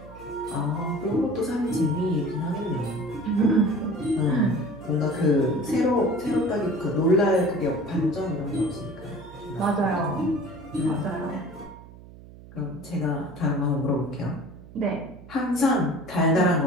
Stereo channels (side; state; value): right; noise; hum, 19 dB below the sound